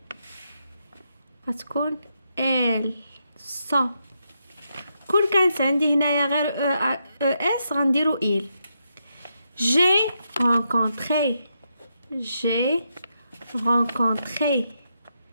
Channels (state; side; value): inverted; both; correlation -0.82